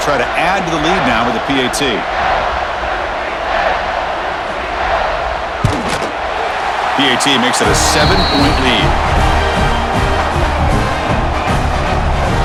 try to add to the lead now with the PAT. PAT makes it a 7-point lead.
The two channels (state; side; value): identical; both; correlation 1.00